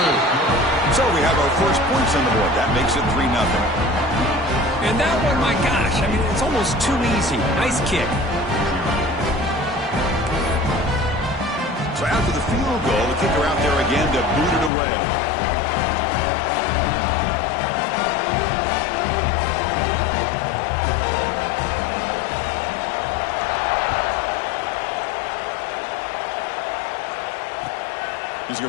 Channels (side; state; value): right; drops out; at 14.7 s